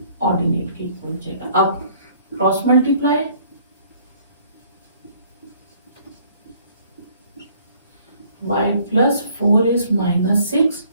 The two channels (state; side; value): inverted; both; correlation -0.60